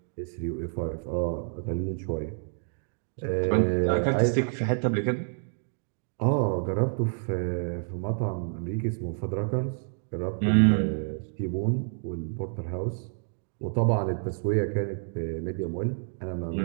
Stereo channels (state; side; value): silent; left; digital silence